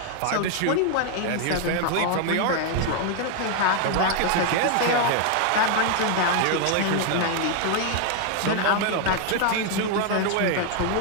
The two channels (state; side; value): different; both; correlation 0.00